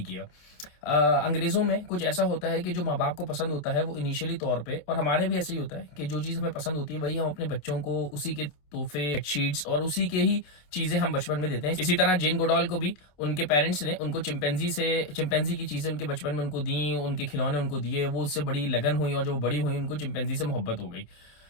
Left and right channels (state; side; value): late; right; 27 ms